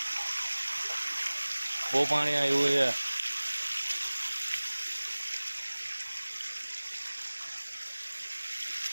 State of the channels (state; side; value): inverted; both; correlation -1.00